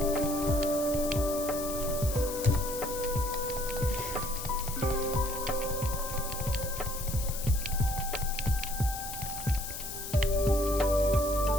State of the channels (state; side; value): noise; left; hiss, 7 dB below the sound